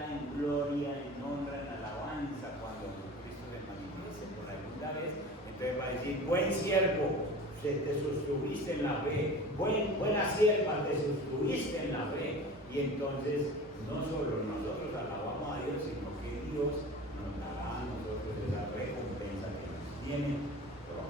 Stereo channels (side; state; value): both; normal; correlation 0.37